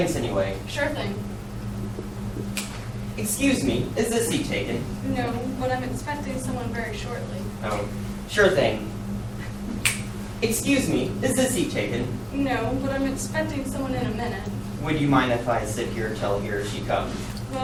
anyway. Sure thing. Excuse me, is this seat taken? No, but I'm expecting someone very shortly. Oh, sure thing. Excuse me, is this seat taken? No, but I'm expecting someone in a minute. Would you mind if I sit here till here she comes?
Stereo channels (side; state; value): both; identical; correlation 1.00